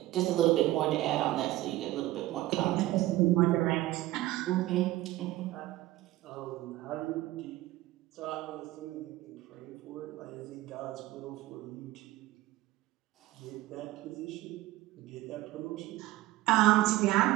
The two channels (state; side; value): quieter; left; 16.9 dB